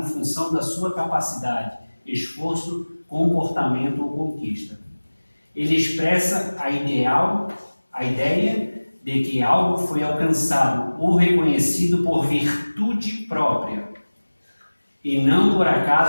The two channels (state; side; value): inverted; both; correlation -1.00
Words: função da sua capacidade, esforço, comportamento ou conquista. Ele expressa a ideia de que algo foi alcançado ou reconhecido por virtude própria, e não por